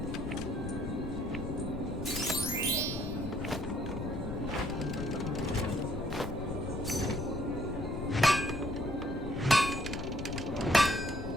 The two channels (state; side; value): noise; left; rumble, 6 dB below the sound